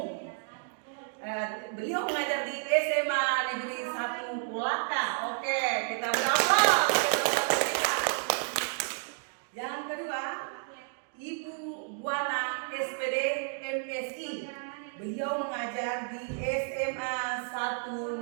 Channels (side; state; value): left; silent; 57 dB below the other